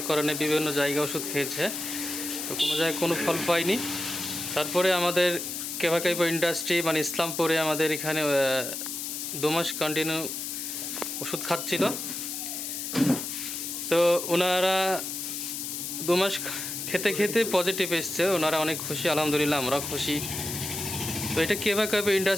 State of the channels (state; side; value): noise; left; hiss, 5 dB below the sound